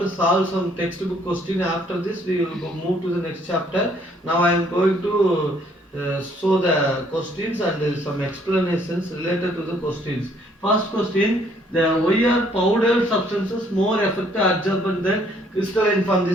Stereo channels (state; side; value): normal; both; correlation 0.64